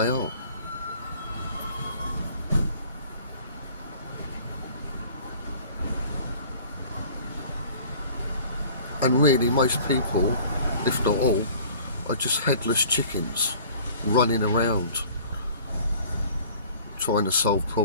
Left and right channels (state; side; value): inverted; both; correlation -0.49